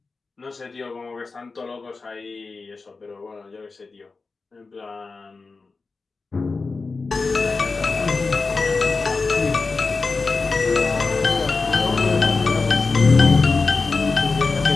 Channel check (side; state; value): right; quieter; 4.1 dB